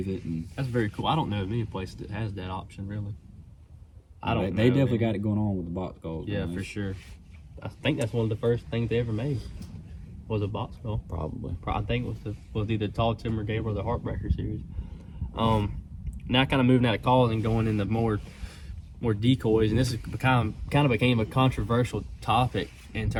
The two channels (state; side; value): identical; both; correlation 1.00